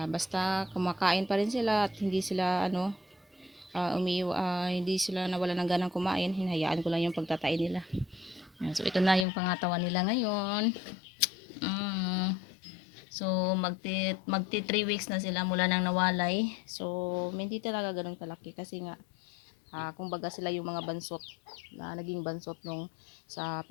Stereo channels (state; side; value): drops out; right; at 9.2 s